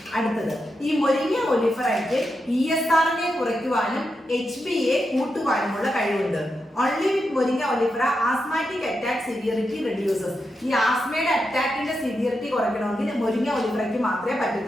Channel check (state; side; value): normal; both; correlation 0.86